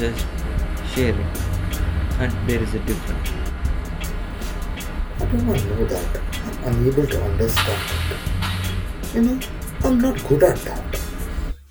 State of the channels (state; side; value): identical; both; correlation 1.00